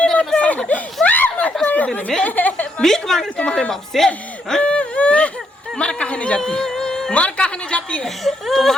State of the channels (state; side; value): normal; both; correlation 0.76